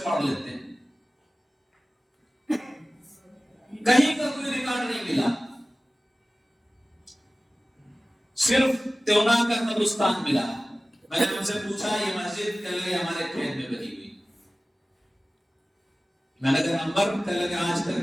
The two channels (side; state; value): both; normal; correlation 0.97